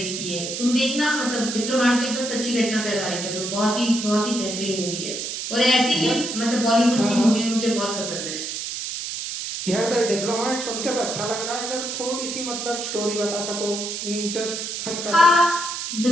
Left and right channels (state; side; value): noise; right; hiss, 5 dB below the sound